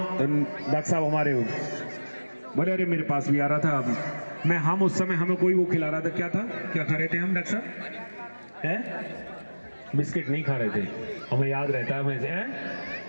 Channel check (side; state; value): both; inverted; correlation -1.00